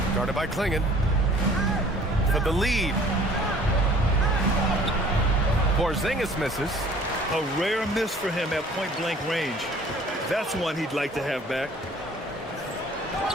guarded by Klingon. For the lead. Porzingis misses. A rare miss for him at point-blank range. That's one he'd like to have back.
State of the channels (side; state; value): both; normal; correlation 0.52